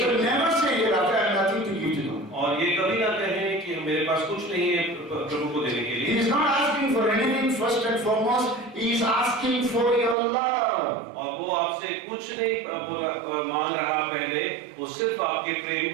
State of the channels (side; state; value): left; drops out; at 10.2 s